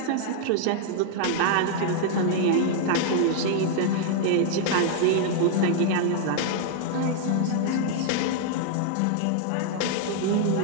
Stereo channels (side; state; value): both; different; correlation 0.00